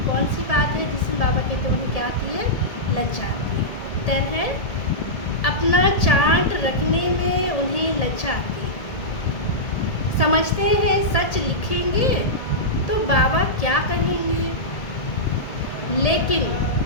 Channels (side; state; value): right; late; 1.8 ms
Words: कौन सी बात है जिसमें बाबा कहते उन्हें क्या आती है? लज्जा आती है। उत्तर है, अपना चार्ट रखने में उन्हें लज्जा आती है। समझते हैं सच लिखेंगे तो बाबा क्या कहेंगे, लेकिन